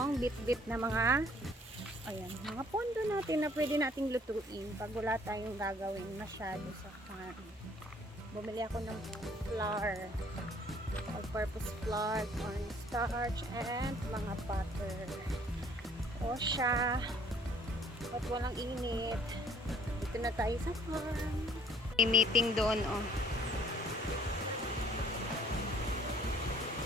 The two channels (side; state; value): both; normal; correlation 0.58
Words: bit-bit na mga mga pondo natin na pwede nating lutuin pag wala tayong gagawin masyado sa farm. Bumili ako ng flour. All-purpose flour, cornstarch, and mga butter. O siya. At walang init. Dito na tayo sa farm. May meeting doon, oh.